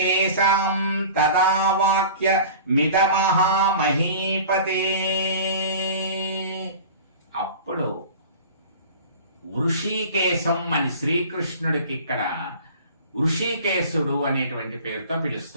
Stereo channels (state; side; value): inverted; both; correlation -0.40